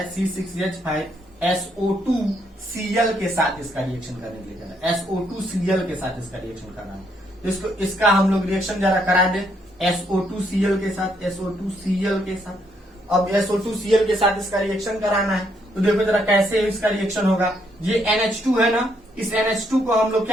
C6H5SO2Cl के साथ इसका रिएक्शन करने के लिए कह रहा है, SO2Cl के साथ इसका रिएक्शन कर रहा है। तो इसका हम लोग रिएक्शन जरा करा दे SO2Cl के साथ, SO2Cl के साथ। अब SO2Cl के साथ इसका रिएक्शन कराना है, तो देखो जरा कैसे इसका रिएक्शन होगा। ये NH2 है ना, इस NH2 को हम लोग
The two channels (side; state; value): both; normal; correlation 0.73